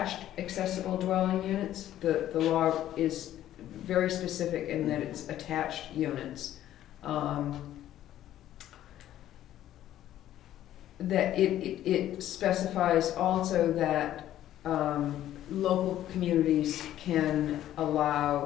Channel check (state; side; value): quieter; right; 12.5 dB